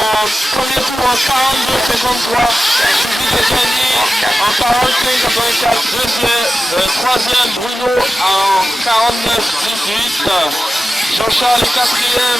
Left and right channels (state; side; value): normal; both; correlation 0.93